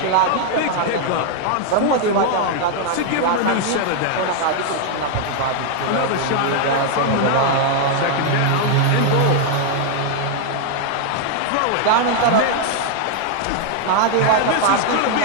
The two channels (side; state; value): both; different; correlation 0.00